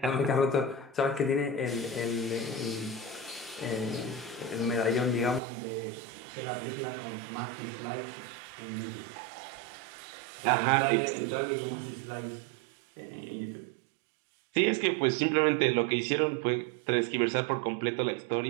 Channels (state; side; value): drops out; left; at 5.4 s